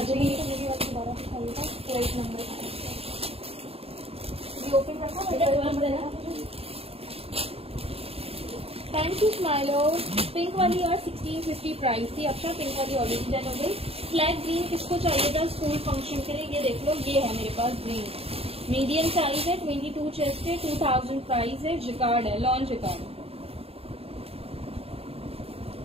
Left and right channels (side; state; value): left; late; 0.28 ms